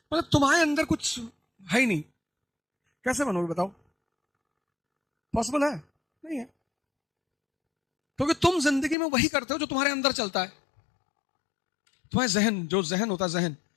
मतलब तुम्हारे अंदर कुछ है ही नहीं, कैसे बनोगे बताओ? पॉसिबल है? नहीं है। क्योंकि तुम जिंदगी में वही करते हो जो तुम्हारे अंदर चलता है। तुम्हारे जहन, जो जहन होता है, जहन,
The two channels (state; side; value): drops out; right; at 9.0 s